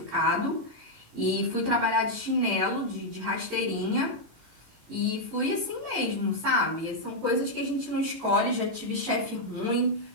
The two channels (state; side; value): late; left; 18 ms